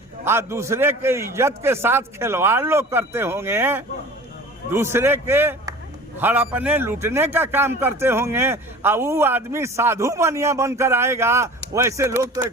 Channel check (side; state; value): both; normal; correlation 0.41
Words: दूसरे के इज्जत के साथ खिलवाड़ लोग करते होंगे, दूसरे के हड़पने लूटने का काम करते होंगे, वो आदमी साधु बनिया बनकर आएगा, वैसे लोग तो